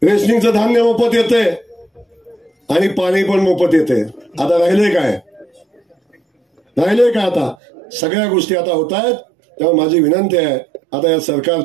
रेशनिंगचं धान्य मोफत येते आणि पाणी पण मोफत येते. आता राहिले काय आता सगळ्या गोष्टी आता होत आहेत. तेव्हा माझी विनंती आहे, आता या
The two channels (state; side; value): drops out; left; at 7.6 s